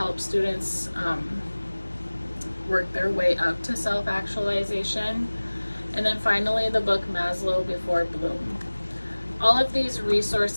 students work their way up to self-actualization. And then finally, the book Maslow Before Bloom. All of these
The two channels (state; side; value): inverted; both; correlation -1.00